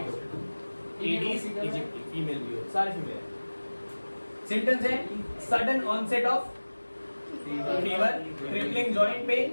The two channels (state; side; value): inverted; both; correlation -1.00